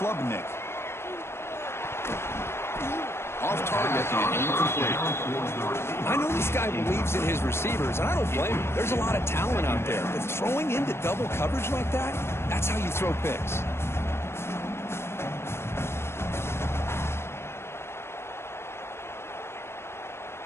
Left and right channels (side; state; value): right; late; 0.12 ms